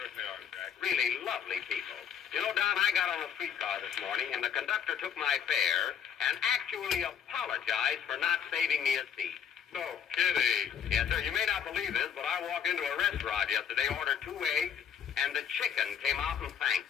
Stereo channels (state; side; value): quieter; right; 8.1 dB